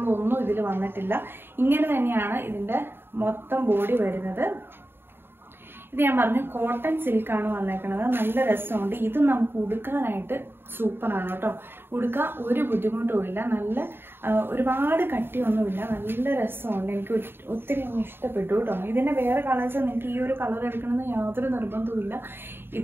ഇതിൽ വന്നിട്ടില്ല. ഇങ്ങനെ തന്നെയാണ് ഇതിന്റെ മൊത്തം ബോഡി വരുന്നത്. ഇത് ഞാൻ പറഞ്ഞു കോട്ടൺ സിൽക്കാണ് വന്നേക്കുന്നത്. നല്ല രസമുണ്ട്. ഇത് നമുക്ക് ഉടുക്കാനായിട്ട് സൂപ്പറാണ് കേട്ടോ. ഉടുക്കാൻ ഒരു ബുദ്ധിമുട്ടുമില്ല. നല്ല ഒരുപാട് കട്ടിയൊന്നുമില്ല. നല്ല രസമുണ്ട്. എനിക്ക് ഒത്തിരി ഇഷ്ടപ്പെട്ടു കേട്ടോ. ഇതിന്റെ വേറെ കളേഴ്സ് നിങ്ങൾക്ക് ഈ ഒരു കളർ എടുക്കണമെന്ന് യാതൊരു നിർബന്ധവുമില്ല.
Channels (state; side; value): late; left; 0.11 ms